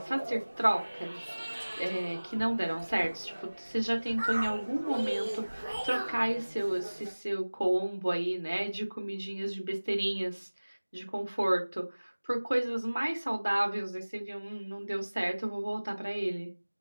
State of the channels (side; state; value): both; inverted; correlation -1.00